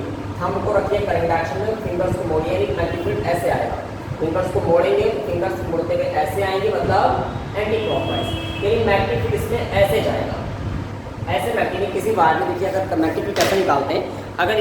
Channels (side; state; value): both; identical; correlation 1.00